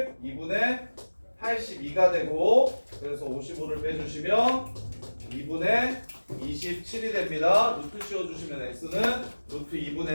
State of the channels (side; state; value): both; inverted; correlation -1.00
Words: 2분의 82가 되고 그래서 55를 빼주시면 2분의 27이 됩니다. 루트 씌워주시면 x는 루트